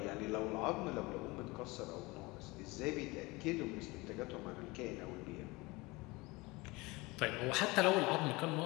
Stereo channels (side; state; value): right; quieter; 23.3 dB